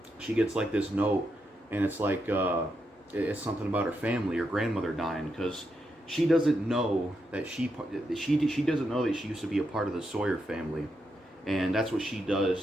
she gets like this note, and it's like it's something about her family, her grandmother dying, because she doesn't know that she doesn't know that she used to be a part of the Sawyer family. And that's what she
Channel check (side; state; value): both; normal; correlation 0.83